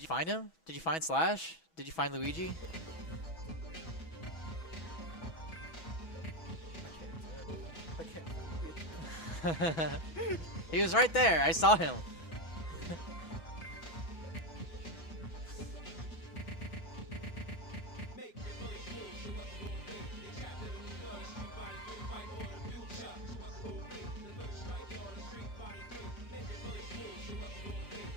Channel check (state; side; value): late; right; 6.1 ms